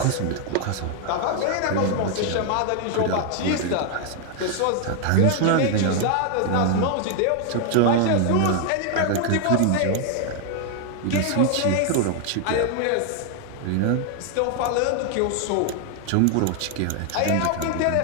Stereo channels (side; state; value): both; different; correlation 0.00